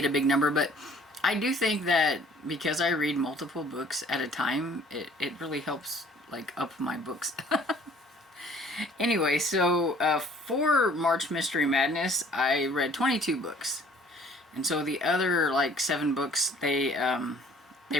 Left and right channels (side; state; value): both; normal; correlation 0.55